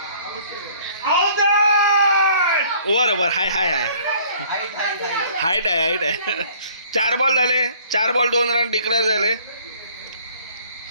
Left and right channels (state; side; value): inverted; both; correlation -0.56